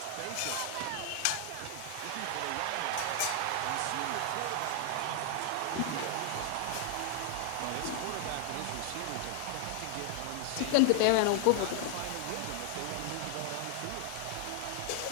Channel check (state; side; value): different; both; correlation 0.00